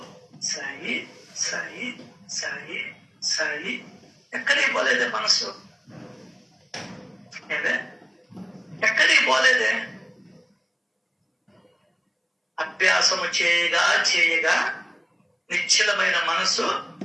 సాయి సాయి సాయి సాయి. ఎక్కడికి పోలేదే మనసు, ఏదే ఎక్కడికి పోలేదే. అభ్యాసము చేయగా చేయగా నిశ్చలమైన మనసు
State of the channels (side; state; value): both; identical; correlation 1.00